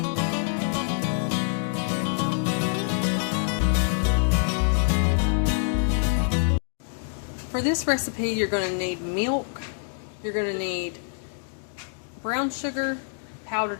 For this recipe, you're going to need milk, you're going to need brown sugar,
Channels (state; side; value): silent; right; 61 dB below the other